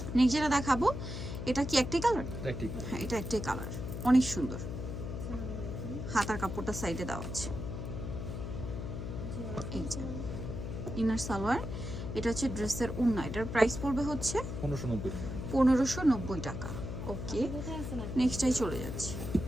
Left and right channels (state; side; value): noise; left; hum, 6 dB below the sound